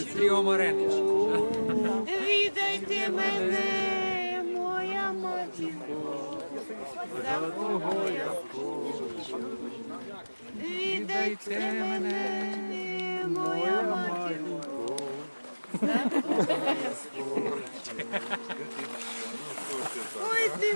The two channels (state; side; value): inverted; both; correlation -1.00